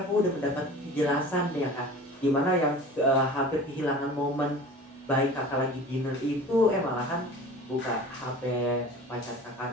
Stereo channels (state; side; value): normal; both; correlation 0.40